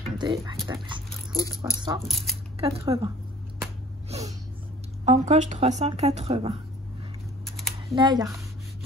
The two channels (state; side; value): normal; both; correlation 0.49